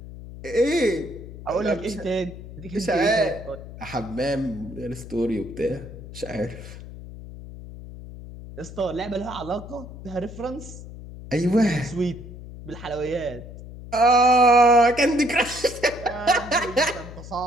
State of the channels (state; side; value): noise; left; hum, 13 dB below the sound